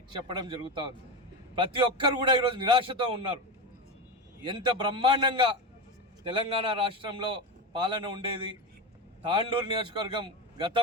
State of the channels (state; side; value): normal; both; correlation 0.18